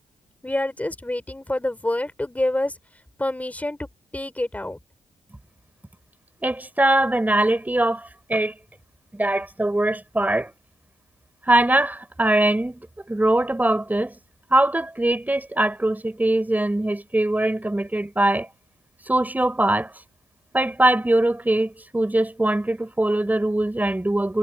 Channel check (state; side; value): normal; both; correlation 0.89